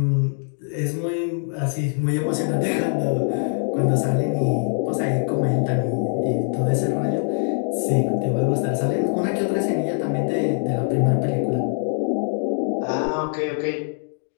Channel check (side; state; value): right; silent; 63 dB below the other